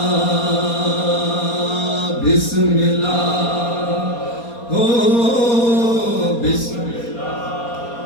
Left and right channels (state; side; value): late; right; 4.2 ms